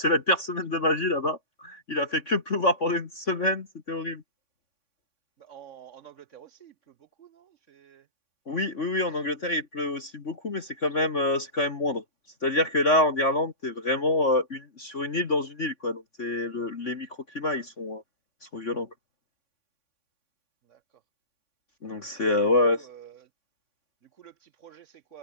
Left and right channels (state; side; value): late; right; 3.6 ms